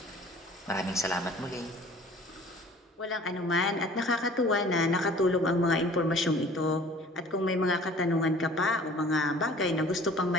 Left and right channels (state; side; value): normal; both; correlation 0.49